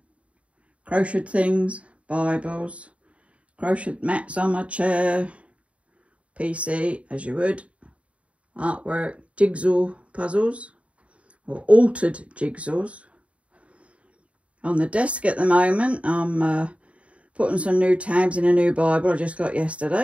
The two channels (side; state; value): left; late; 0.064 ms